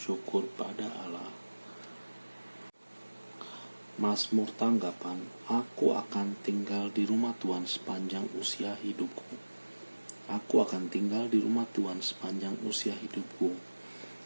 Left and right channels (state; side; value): inverted; both; correlation -1.00